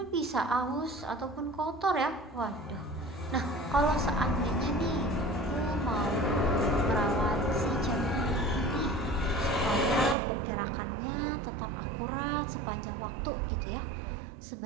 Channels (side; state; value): left; drops out; at 10.2 s